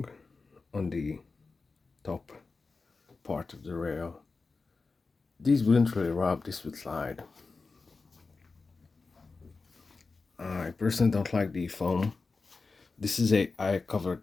on the top part of the rail. These wouldn't really rub, this would slide. I personally don't like the foam. I covered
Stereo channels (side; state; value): right; quieter; 4.1 dB